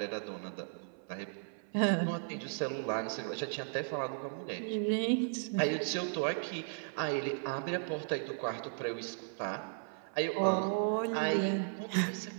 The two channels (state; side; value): silent; left; 54 dB below the other